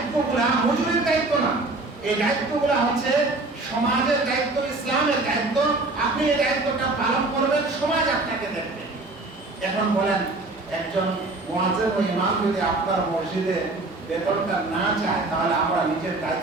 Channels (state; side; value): quieter; left; 3.1 dB